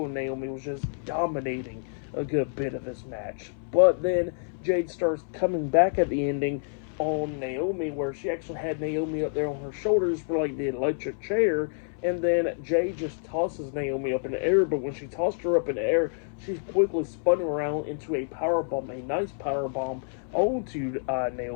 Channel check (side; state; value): right; silent; 59 dB below the other